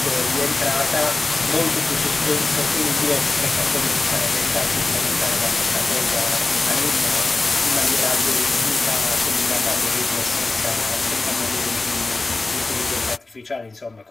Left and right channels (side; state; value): right; quieter; 3.3 dB